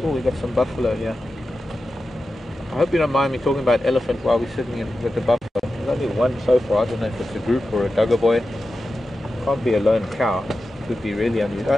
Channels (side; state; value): both; normal; correlation 0.92